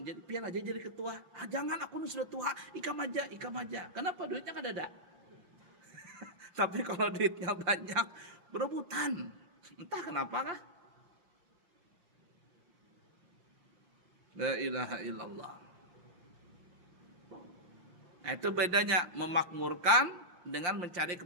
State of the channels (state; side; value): late; left; 5.7 ms